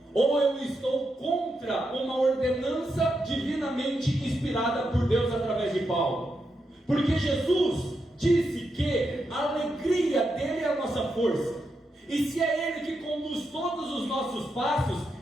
ou eu estou contra uma ordenança divinamente inspirada por Deus através de Paulo. Porque Jesus disse que a alegria dele é a nossa força. E se é Ele que conduz todos os nossos passos,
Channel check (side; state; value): both; normal; correlation 0.84